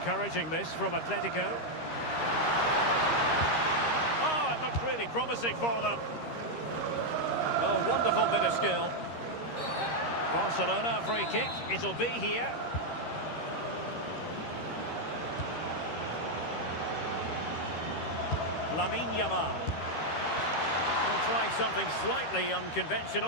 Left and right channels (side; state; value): right; late; 13 ms